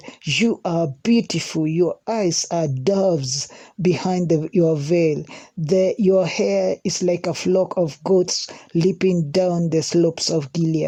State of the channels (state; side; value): identical; both; correlation 1.00